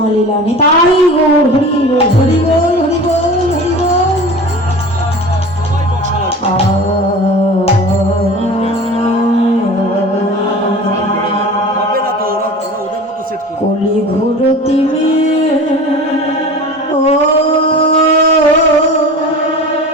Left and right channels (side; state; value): both; normal; correlation 0.37